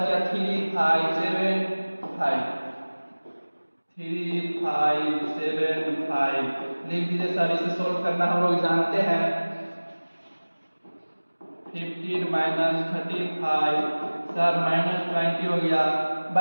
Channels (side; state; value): both; inverted; correlation -1.00